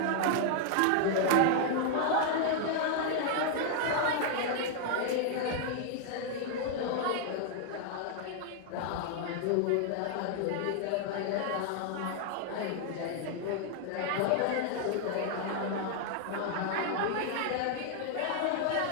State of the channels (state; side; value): different; both; correlation 0.00